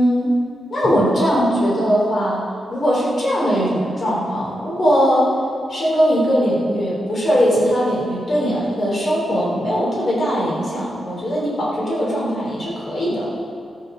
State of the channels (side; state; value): both; normal; correlation 0.86